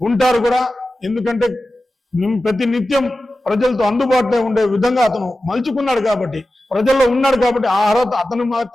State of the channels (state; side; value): normal; both; correlation 0.94